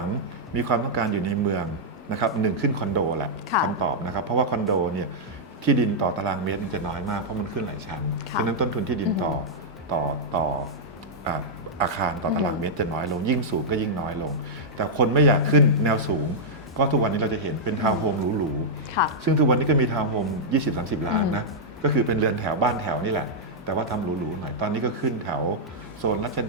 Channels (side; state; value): both; normal; correlation -0.07